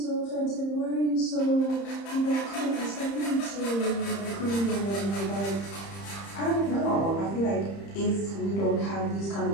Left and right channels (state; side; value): late; right; 30 ms